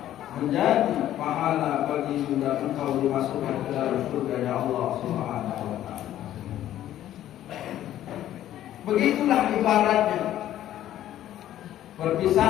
menjadi pahala bagi dan engkau dimasukkan ke dalam surga Allah Subhanahu wa taala. Begitulah ibaratnya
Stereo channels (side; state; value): right; quieter; 12.5 dB